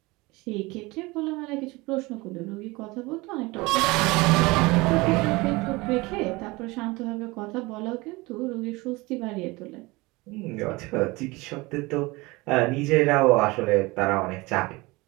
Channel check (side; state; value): left; quieter; 22.9 dB